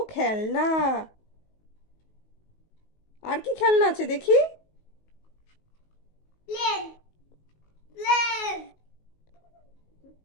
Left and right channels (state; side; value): late; right; 19 ms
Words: খেলনা। আর কি খেলনা আছে দেখি? Plane, plane.